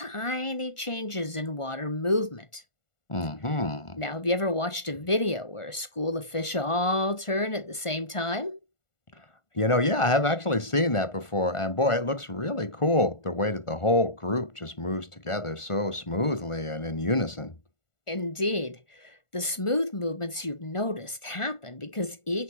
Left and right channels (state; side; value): late; right; 1.4 ms